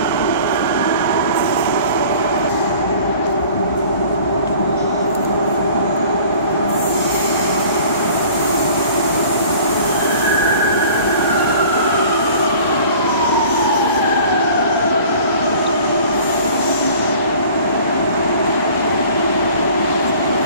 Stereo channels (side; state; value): both; inverted; correlation -0.47